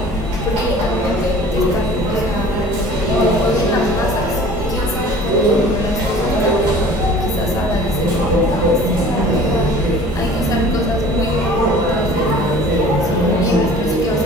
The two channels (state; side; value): normal; both; correlation 0.46